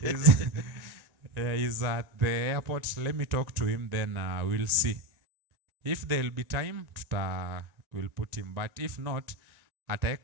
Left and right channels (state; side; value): late; left; 1.9 ms